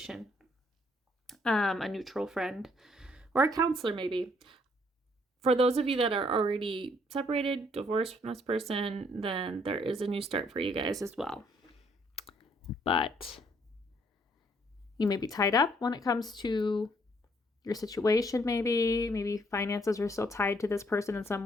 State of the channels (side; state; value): both; normal; correlation 0.67